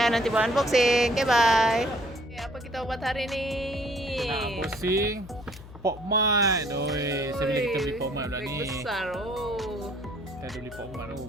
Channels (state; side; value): noise; left; hum, 16 dB below the sound